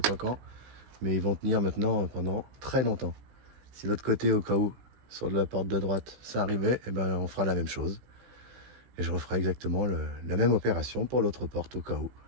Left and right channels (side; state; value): left; late; 16 ms